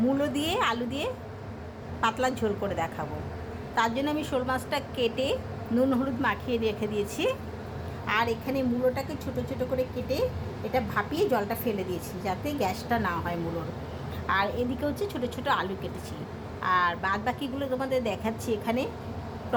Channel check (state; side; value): identical; both; correlation 1.00